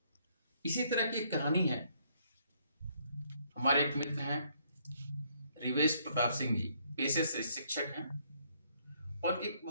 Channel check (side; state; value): both; inverted; correlation -0.69